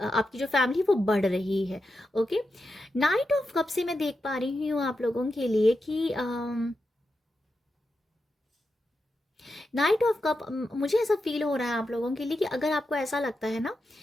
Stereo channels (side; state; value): both; normal; correlation 0.88